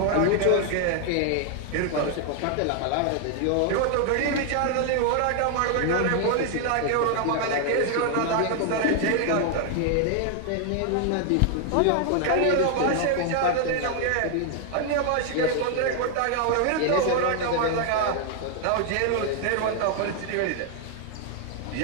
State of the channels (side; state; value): both; different; correlation 0.00